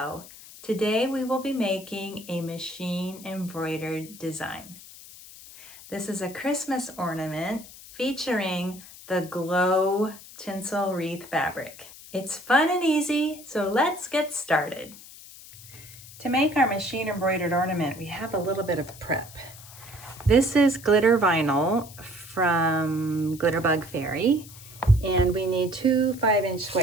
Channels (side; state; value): left; noise; hiss, 18 dB below the sound